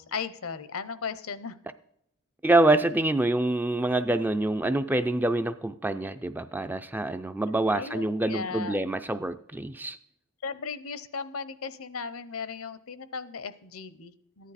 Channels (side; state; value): both; normal; correlation 0.68